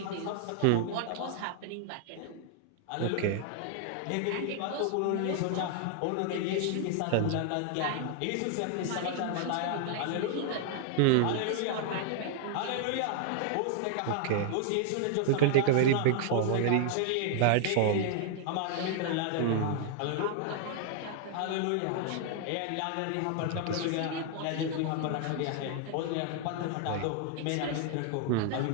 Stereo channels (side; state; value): both; different; correlation 0.00